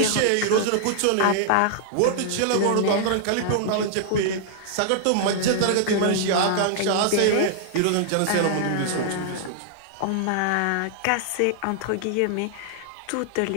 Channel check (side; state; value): both; different; correlation -0.01